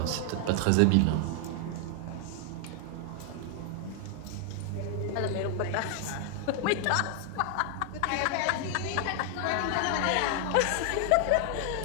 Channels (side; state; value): both; different; correlation 0.00